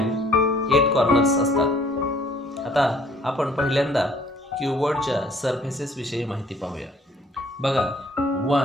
8 कॉर्नर्स असतात. आता आपण पहिल्यांदा क्युबॉइडच्या सरफेसेस विषयी माहिती पाहूया. बघा,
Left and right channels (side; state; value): both; normal; correlation 0.59